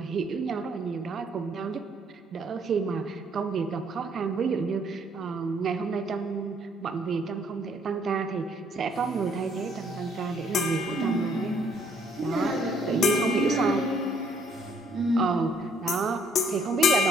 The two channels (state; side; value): normal; both; correlation 0.65